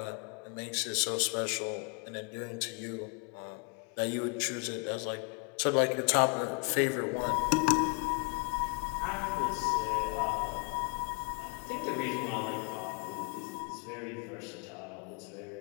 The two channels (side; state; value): right; quieter; 34.2 dB